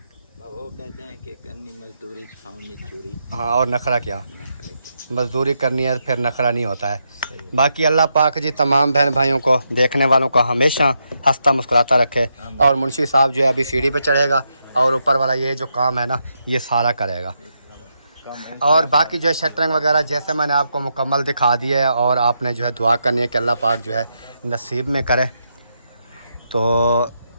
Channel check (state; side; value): inverted; both; correlation -0.82